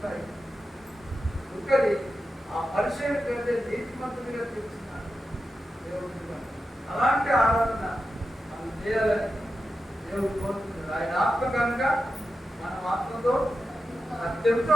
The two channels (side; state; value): both; normal; correlation 0.90